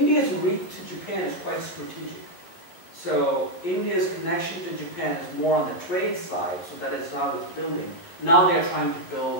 reach to Japan is quite strategic. So India's connection to Japan is more on the trade side, so that is how it's building. Now they're trying to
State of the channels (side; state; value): right; late; 11 ms